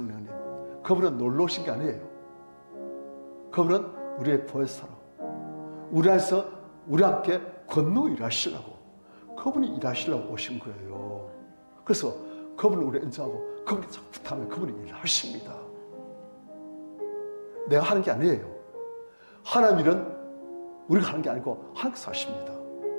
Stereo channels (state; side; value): inverted; both; correlation -1.00